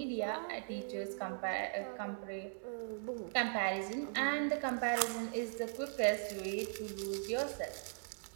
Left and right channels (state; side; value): silent; left; digital silence